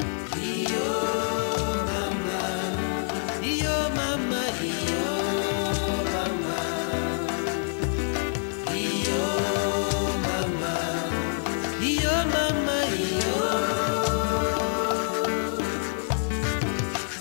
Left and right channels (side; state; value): right; silent; digital silence